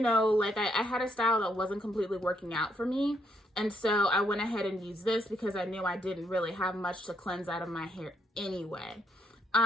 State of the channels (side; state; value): both; normal; correlation 0.74